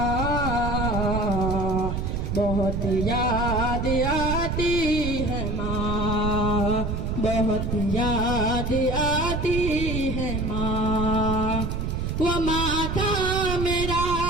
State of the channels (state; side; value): noise; right; rumble, 2 dB below the sound